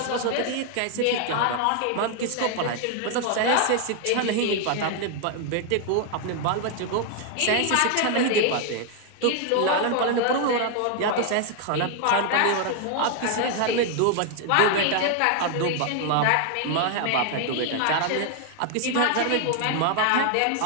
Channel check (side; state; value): both; different; correlation 0.00